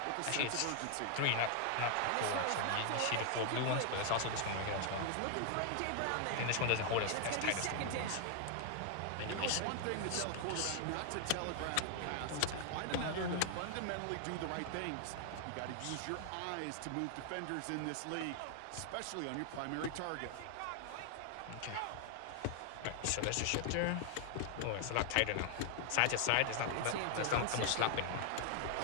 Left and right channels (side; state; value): both; different; correlation 0.00